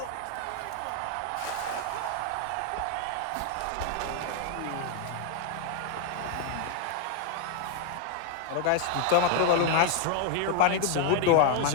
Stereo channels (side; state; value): both; different; correlation 0.01